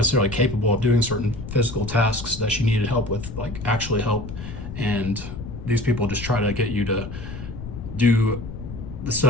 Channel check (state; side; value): noise; left; rumble, 9 dB below the sound